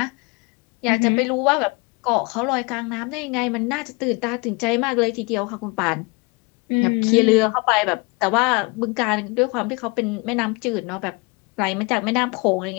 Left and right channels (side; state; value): right; quieter; 28.3 dB